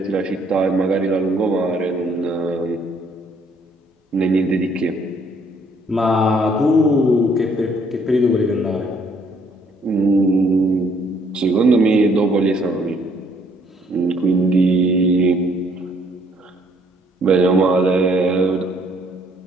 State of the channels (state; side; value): normal; both; correlation 0.65